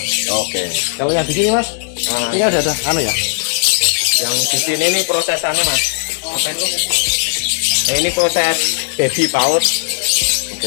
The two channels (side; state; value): right; silent; digital silence